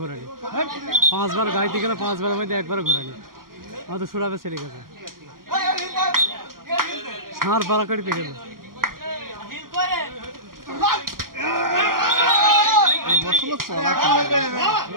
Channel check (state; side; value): late; left; 0.92 ms